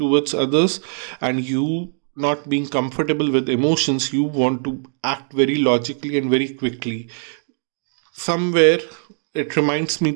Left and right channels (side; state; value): left; silent; 63 dB below the other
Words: others, and you not being comfortable with emotions, you want to act very logically and very quickly. Somewhere it reminds me